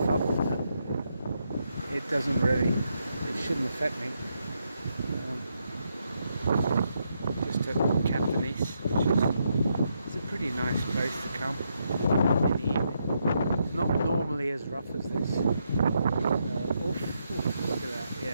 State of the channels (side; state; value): both; inverted; correlation -0.80